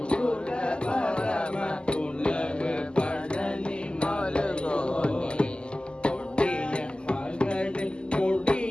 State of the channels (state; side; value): late; right; 0.049 ms